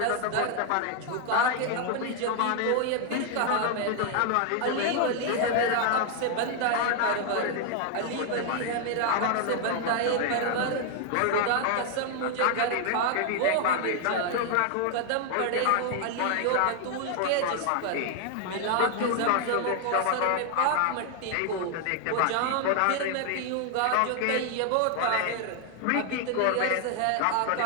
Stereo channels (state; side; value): different; both; correlation 0.00